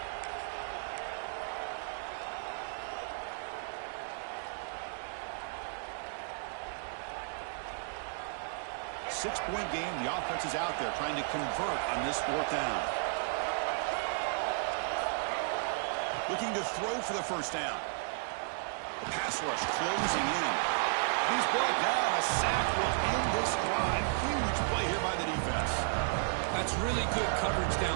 Six-point game. The offense is out there trying to convert on this 4th down. Looking to throw for the 1st down. The pass rush closing in. He's brought down. A sack will end this drive. Huge play here by the defense. That's really good coverage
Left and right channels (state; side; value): silent; left; digital silence